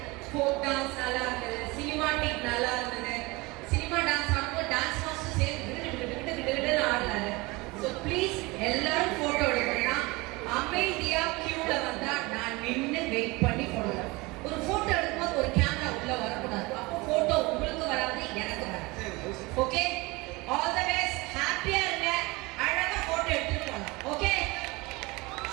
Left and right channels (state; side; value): quieter; left; 23.7 dB